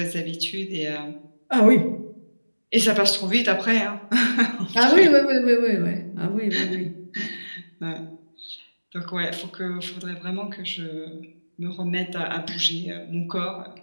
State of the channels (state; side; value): inverted; both; correlation -1.00